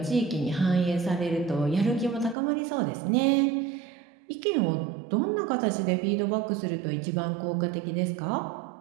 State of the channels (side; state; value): left; drops out; at 2.4 s